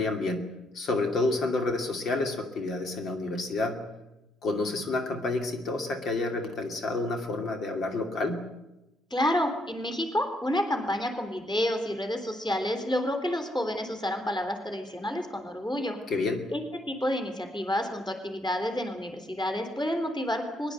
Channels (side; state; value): both; normal; correlation 0.73